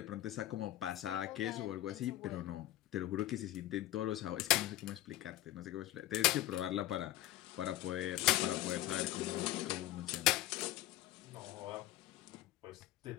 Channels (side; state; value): right; quieter; 15.2 dB